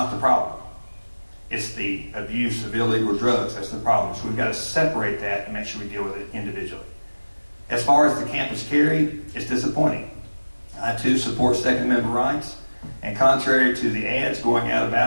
the problem. It's the abuse of illegal drugs that's the problem. So we've got to separate that and make sure we deal with it individually. As far as the campus carry, it's disappointing. I too support Second Amendment rights, and contrary to the ads going out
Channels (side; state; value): both; inverted; correlation -1.00